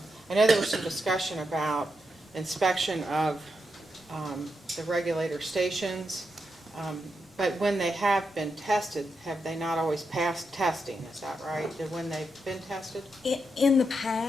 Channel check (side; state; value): both; normal; correlation 0.85